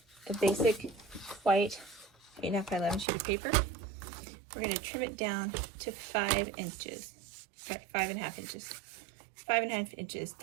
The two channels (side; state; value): left; drops out; at 3.1 s